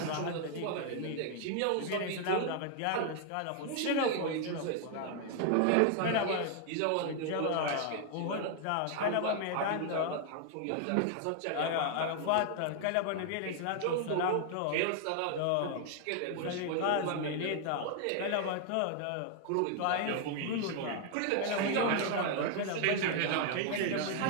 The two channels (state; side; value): different; both; correlation 0.00